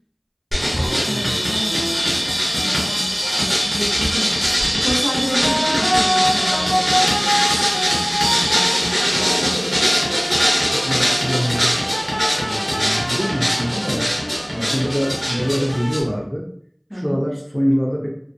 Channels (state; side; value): identical; both; correlation 1.00